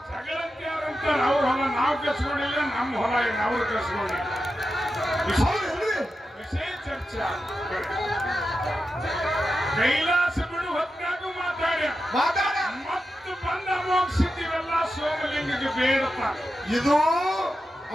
ಜಗಳಂತೆ ಯಾರಂತಾರೆ ಅವ್ರ ಹೊಲ ನಾವು ಕಸ್ಕೊಂಡಿಲ್ಲ, ನಮ್ಮ ಹೊಲ ಅವ್ರು ಕಸ್ಕೊಂಡಿಲ್ಲ. ವಿಷಯ ಚರ್ಚೆ. ಕೈಲಾಸ ಬಿಡು ಹೊತ್ತಾಗೂ ಮಾತಾಡ ಮತ್ತು ಬಂದ ಅಮೋಘಸಿದ್ದೀವೆಲ್ಲ ಸೋಮಲಿಂಗಕ್ಕೆ ಬೇಡಪ್ಪ. ಇದು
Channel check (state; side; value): normal; both; correlation 0.90